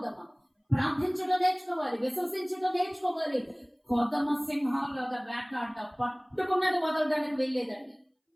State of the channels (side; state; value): both; identical; correlation 1.00